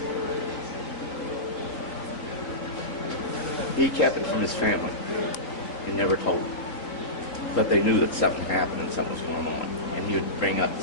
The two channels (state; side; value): late; right; 3.8 ms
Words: He kept it from his family and never told them. But they knew that something happened and something was going on. And he would bring up the